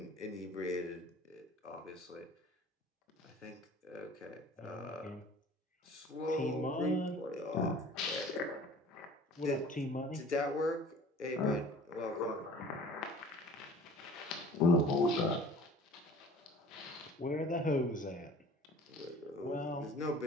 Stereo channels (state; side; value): normal; both; correlation 0.46